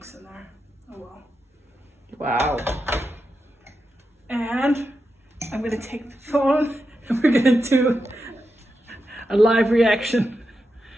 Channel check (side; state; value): both; normal; correlation 0.88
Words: in there. Oh well. Wow. And I'm going to take the phone and we're going to do a live reaction.